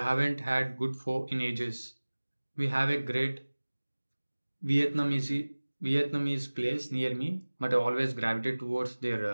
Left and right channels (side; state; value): both; inverted; correlation -1.00